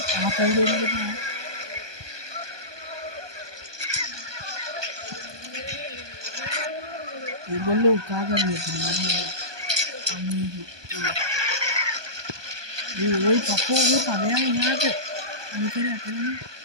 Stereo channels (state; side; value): late; left; 1.2 ms